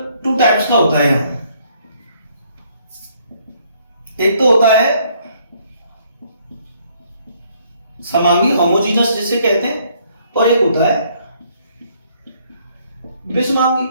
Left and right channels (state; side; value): inverted; both; correlation -0.66